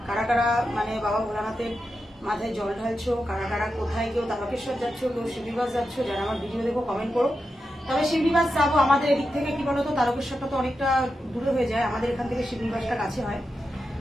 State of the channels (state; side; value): normal; both; correlation 0.89